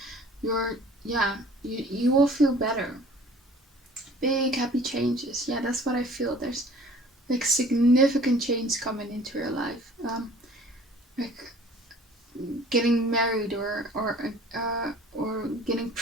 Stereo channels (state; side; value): normal; both; correlation 0.50